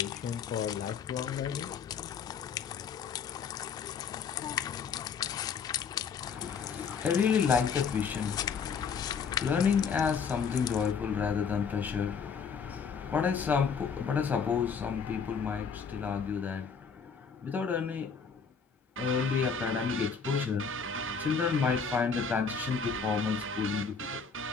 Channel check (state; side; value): quieter; right; 6.0 dB